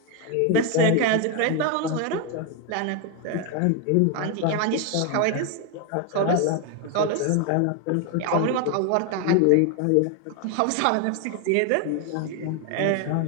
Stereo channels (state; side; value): different; both; correlation 0.01